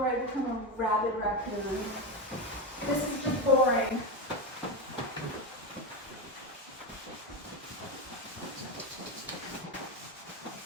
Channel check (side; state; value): both; normal; correlation 0.15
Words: I become a rabid raccoon. This is just boring.